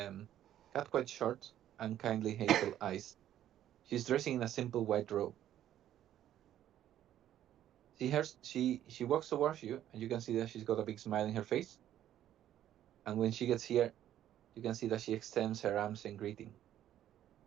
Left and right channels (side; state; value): left; quieter; 11.7 dB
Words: quite short, and kindly hazel eyes. She's dressing in a simple white robe. She walks towards you, and you can see that she's got a big smile in her face. And when she gets here, you can see that she extends her arms in greeting.